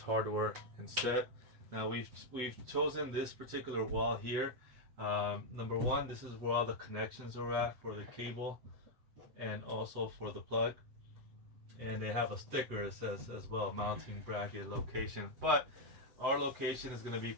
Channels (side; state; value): left; late; 8.0 ms